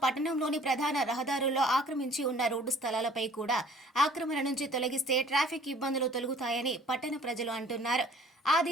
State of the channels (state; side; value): normal; both; correlation 0.53